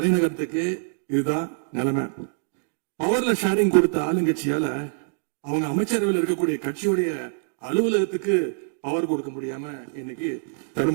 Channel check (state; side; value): silent; left; digital silence